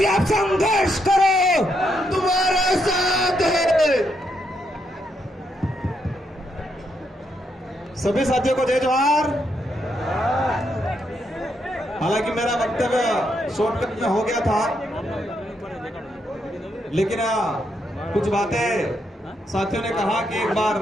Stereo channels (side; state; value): both; normal; correlation 0.78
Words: से आप संघर्ष करो, तुम्हारा साथ है। सभी साथियों को जय जोहार। हालांकि मेरा वक्तव्य शॉर्टकट में हो गया था, लेकिन कुछ बातें साथियों ने कहा कि एक